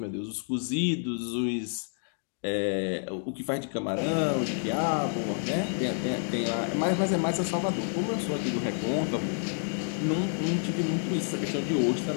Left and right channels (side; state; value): right; silent; 59 dB below the other